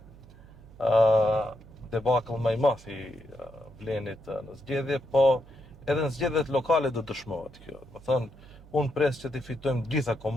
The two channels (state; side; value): noise; right; hum, 21 dB below the sound